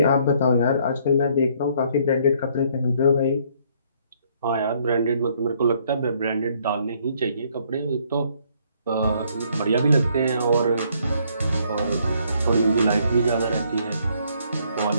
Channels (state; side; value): inverted; both; correlation -0.66